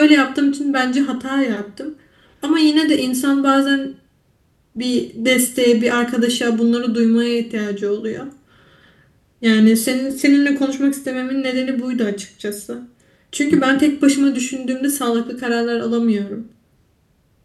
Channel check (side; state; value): both; identical; correlation 1.00